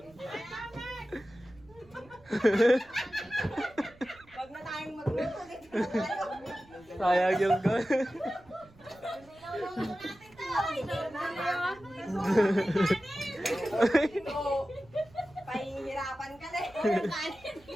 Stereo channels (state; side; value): noise; right; rumble, 26 dB below the sound